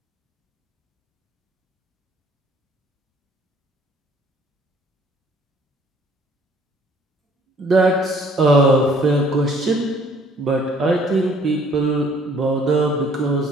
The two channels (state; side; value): normal; both; correlation 0.59